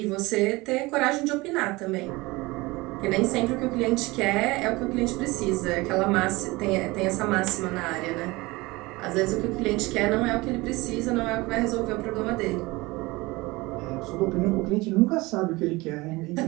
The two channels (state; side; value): quieter; left; 22.2 dB